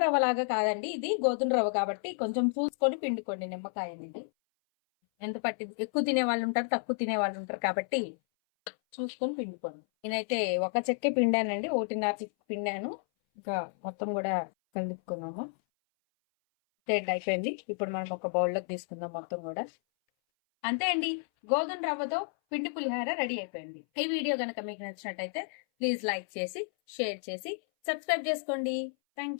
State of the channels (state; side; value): silent; right; 57 dB below the other